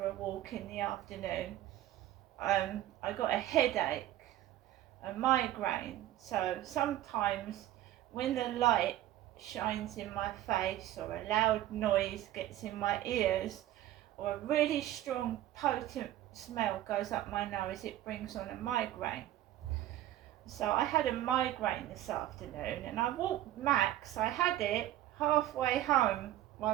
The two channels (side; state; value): left; quieter; 13.8 dB